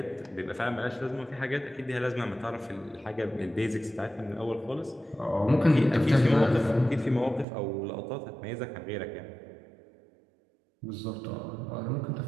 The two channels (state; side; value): drops out; left; at 7.5 s